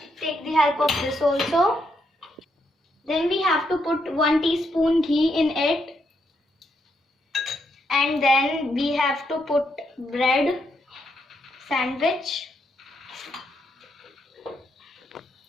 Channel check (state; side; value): normal; both; correlation 0.78